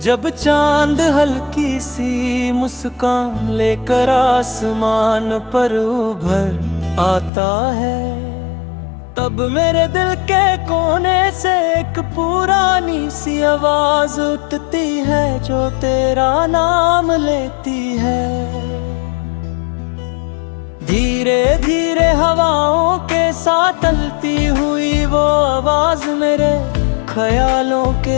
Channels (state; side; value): drops out; right; at 7.3 s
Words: जब चांद हल्की सी मुस्कान लेकर आसमान पर उभर आता है, तब मेरे दिल के कोने से एक पुरानी सी आवाज उठती है जो तेरा नाम लेती है। धीरे धीरे हवाओं के साथ चलती हुई वो आवाज मेरे ख्यालों